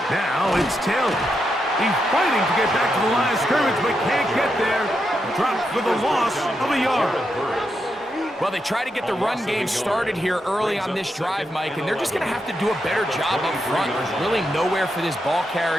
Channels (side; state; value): both; normal; correlation 0.84